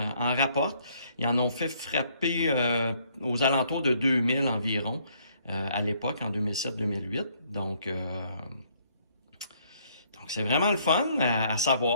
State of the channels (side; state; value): both; inverted; correlation -0.67